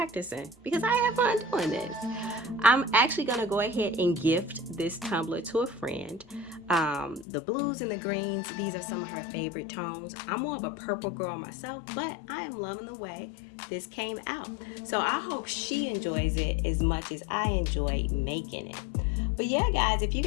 because I have fun doing this. I'm actually going to go ahead and gift this tumbler to a friend. The blues and the greens, these are some of her favorite tones. I'm more of a purple girl myself, but I am loving the way this came out. So I hope she enjoys it as much as I enjoyed making it. But yeah, guys, if you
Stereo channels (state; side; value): drops out; right; at 7.2 s